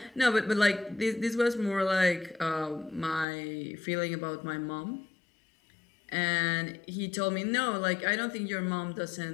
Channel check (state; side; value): drops out; right; at 3.2 s